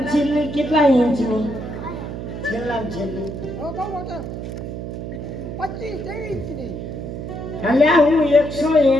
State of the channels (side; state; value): right; noise; hum, 7 dB below the sound